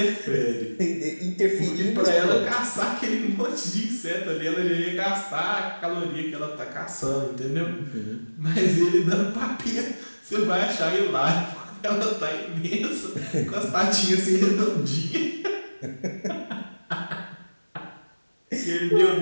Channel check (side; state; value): both; inverted; correlation -1.00